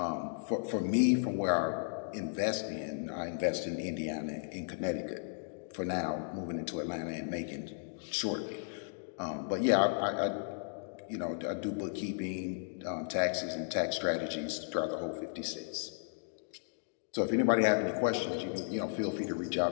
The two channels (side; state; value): right; silent; digital silence